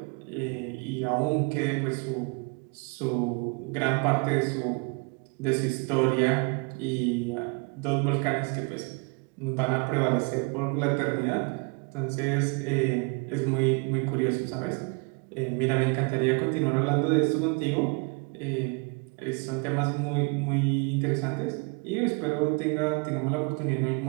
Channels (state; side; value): quieter; left; 31.9 dB